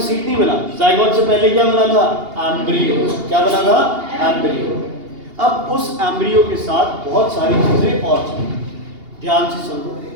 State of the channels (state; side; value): late; left; 2.8 ms